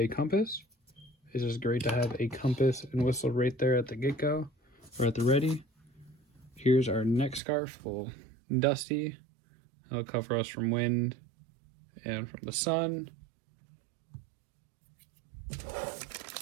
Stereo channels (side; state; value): left; drops out; at 7.4 s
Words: compass. It's just great to have a compass and whistle right there at the get-go, or at the ready. Here's our neck scarf, a little dusty. It'll cover us from wind and from the sun.